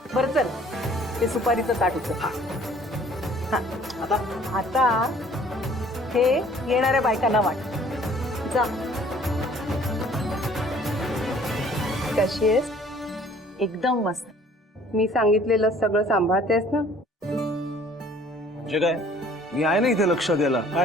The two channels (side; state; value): both; normal; correlation 0.55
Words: बरं चल, ते सुपारीचं ताट उचल. हा, आता हे येणाऱ्या बायकांना वाट. जा. कशी आहेस? एकदम मस्त. मी सांगितलेलं सगळं सांभाळतेस ना? म्हणजे काय, मी आहे ना इथे लक्ष द्यायला.